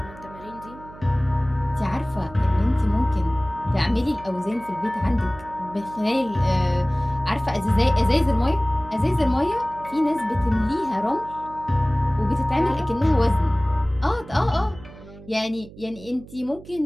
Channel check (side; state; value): right; noise; hum, 18 dB below the sound